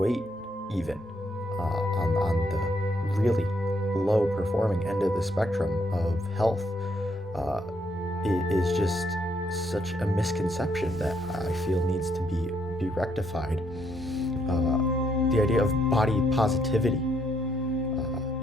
even on the really low performing end of the spectrum of health, uh, is just such a misconception that I feel needs to be rectified. The idea of body positivity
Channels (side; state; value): both; normal; correlation 0.73